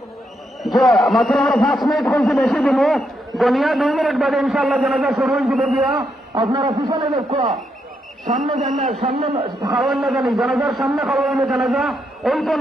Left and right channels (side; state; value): both; normal; correlation 0.79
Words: যে মাত্র আমরা 5 মিনিট হয়েছে, বেশি দিব গনিয়া 2 মিনিট বাদে ইনশাআল্লাহ জানাজা শুরু হয়ে যাব। গিয়া আপনারা পিছনে দেখো, সামনে জানা সামনে খাওয়ান না জানি, জানাজার সামনে খাওয়ান না, জানাজা ওই তো